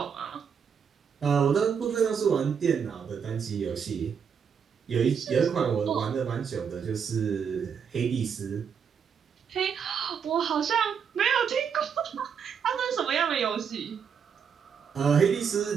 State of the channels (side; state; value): left; quieter; 7.0 dB